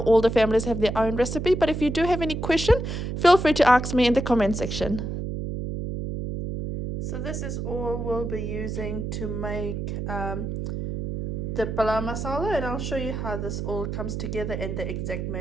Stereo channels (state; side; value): noise; right; hum, 4 dB below the sound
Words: the families have their own recipe, but if you do have any question, feel free to ask me in the comment section. So this is all we'll be using to make the Palau Masala, and I'll show you how this all comes together and the exact